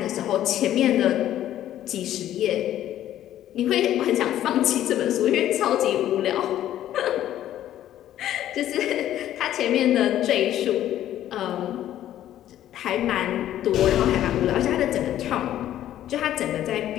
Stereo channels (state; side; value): quieter; right; 12.3 dB